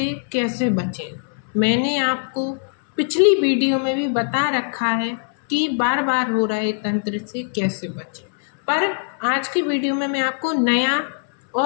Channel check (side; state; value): right; silent; 65 dB below the other